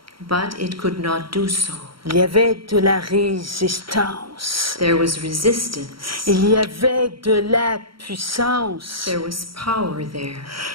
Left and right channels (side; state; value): left; late; 0.74 ms